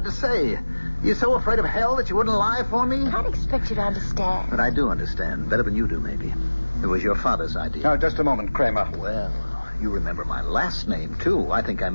to say. You're so afraid of hell that you wouldn't lie for me? I can't expect you to understand. But I do understand. Better than you do, maybe. It was your father's idea. Now, just a moment, Kramer. Well, you remember my last name, too. I think I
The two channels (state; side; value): inverted; both; correlation -1.00